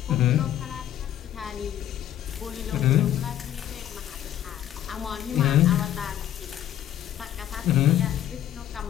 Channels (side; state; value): right; quieter; 11.6 dB